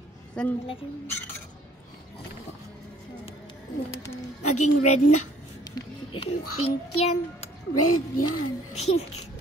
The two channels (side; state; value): both; normal; correlation 0.58